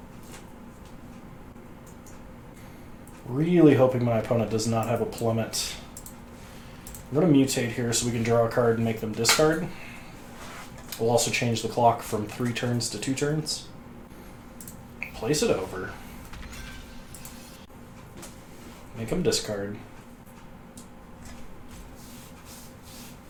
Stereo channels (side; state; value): both; identical; correlation 1.00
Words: Really hoping my opponent does not have a plummet. I'm going to mutate here so we can draw a card and make them discard. We'll also change the clock from 3 turns to 2 turns. Place it over. Make them discard.